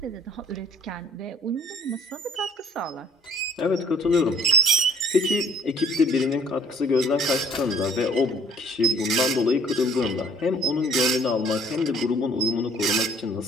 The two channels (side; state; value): both; normal; correlation 0.55